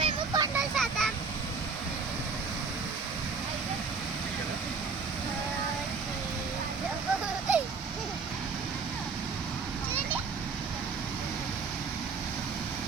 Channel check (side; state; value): left; quieter; 4.9 dB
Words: మేము కొండలు చేద్దాం.